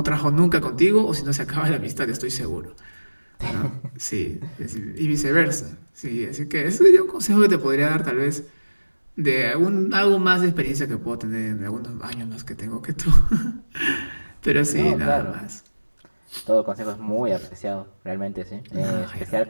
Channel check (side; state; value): both; inverted; correlation -1.00